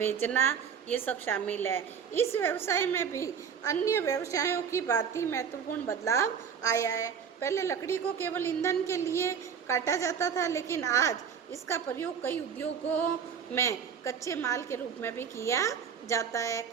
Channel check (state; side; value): quieter; left; 7.1 dB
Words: ये सब शामिल है। इस व्यवसाय में भी अन्य व्यवसायों की भांति महत्वपूर्ण बदलाव आया है। पहले लकड़ी को केवल ईंधन के लिए काटा जाता था, लेकिन आज इसका प्रयोग कई उद्योगों में कच्चे माल के रूप में भी किया जाता है।